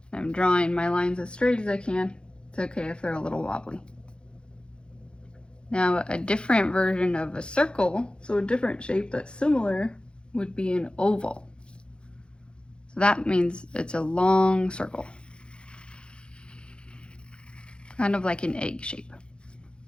I'm drawing my lines as straight as I can. It's okay if they're a little wobbly. Now a different version of a circle, so a different shape that's similar, would be an oval. So that means it's a long circle. Kind of like an egg shape.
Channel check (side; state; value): right; late; 0.054 ms